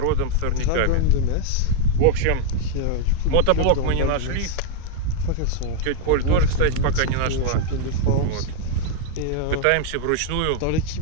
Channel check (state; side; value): different; both; correlation 0.01